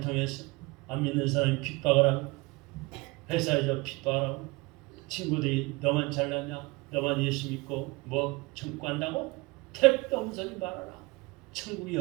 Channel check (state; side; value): quieter; left; 24.8 dB